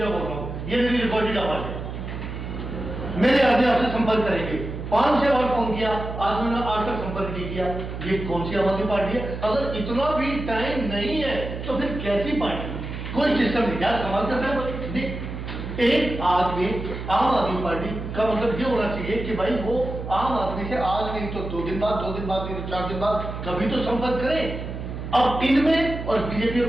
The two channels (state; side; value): noise; right; hum, 7 dB below the sound